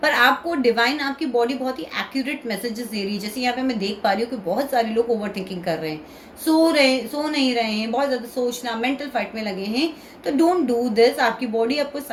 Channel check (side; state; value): both; identical; correlation 1.00